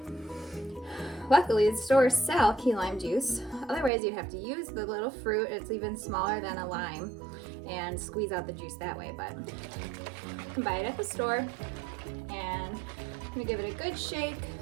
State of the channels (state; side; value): drops out; left; at 3.9 s